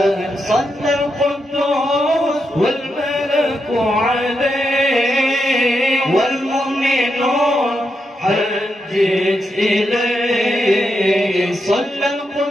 صلى القدوس والملك عليه والمؤمنون حجت إليه صلى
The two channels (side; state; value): both; normal; correlation 0.84